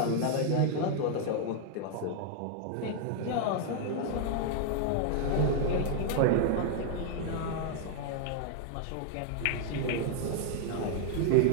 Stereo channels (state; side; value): different; both; correlation -0.01